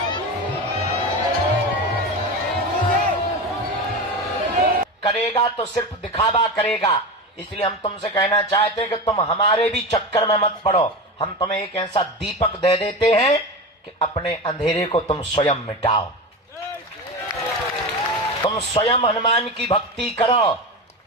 करेगा तो सिर्फ दिखावा करेगा। इसलिए हम तुमसे कहना चाहते हैं कि तुम हमारे भी चक्कर में मत पड़ो। हम तुम्हें एक ऐसा दीपक दे देते हैं कि अपने अंधेरे को तुम स्वयं मिटाओ। तुम स्वयं हनुमान की भक्ति करो,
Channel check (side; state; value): both; normal; correlation 0.24